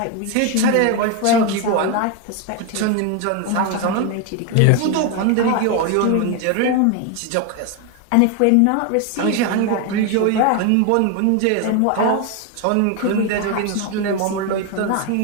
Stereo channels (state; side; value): different; both; correlation 0.01